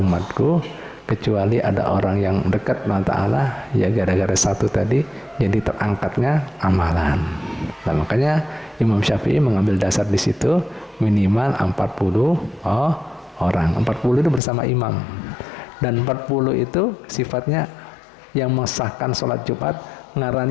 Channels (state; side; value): drops out; right; at 14.4 s